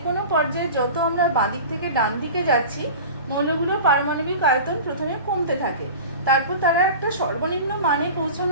কোনো পর্যায়ে যত আমরা বাঁ দিক থেকে ডান দিকে যাচ্ছি মৌলগুলোর পারমাণবিক আয়তন প্রথমে কমতে থাকে, তারপর তারা একটা সর্বনিম্ন মানে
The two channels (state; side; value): inverted; both; correlation -0.36